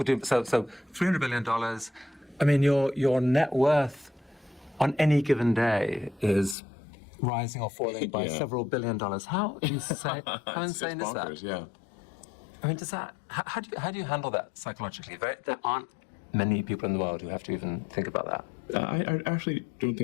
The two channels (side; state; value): right; drops out; at 6.6 s